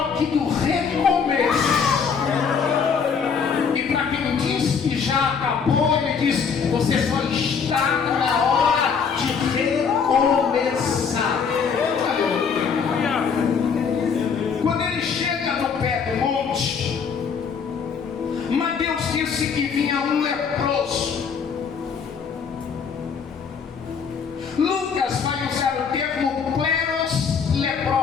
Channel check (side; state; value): right; quieter; 6.2 dB